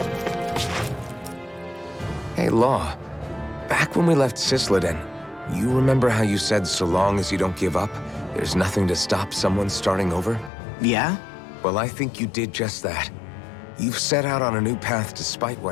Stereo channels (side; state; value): right; drops out; at 10.5 s